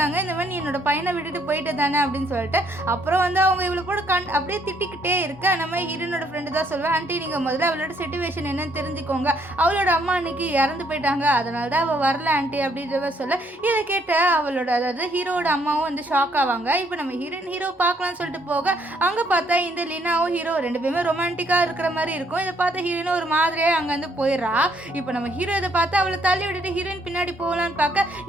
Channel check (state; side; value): normal; both; correlation 0.68